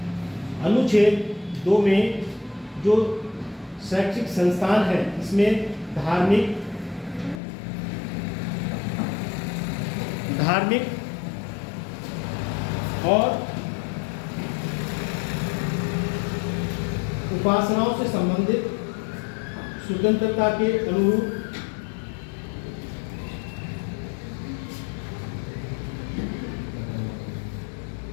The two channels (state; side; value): drops out; right; at 7.4 s